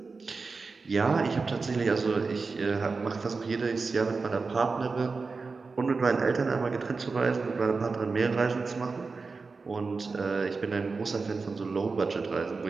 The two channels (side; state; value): left; quieter; 4.3 dB